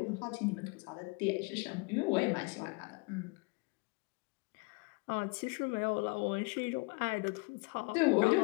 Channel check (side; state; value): right; quieter; 29.4 dB